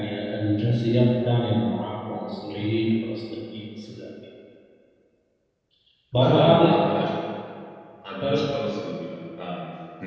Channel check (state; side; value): identical; both; correlation 1.00